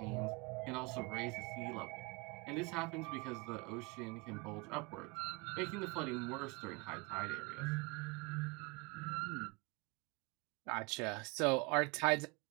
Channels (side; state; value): left; quieter; 27.8 dB